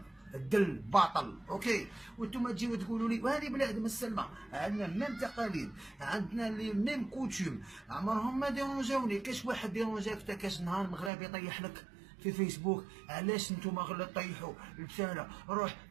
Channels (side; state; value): left; drops out; at 11.1 s